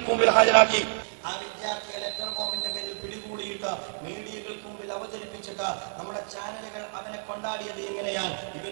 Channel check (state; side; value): silent; left; 59 dB below the other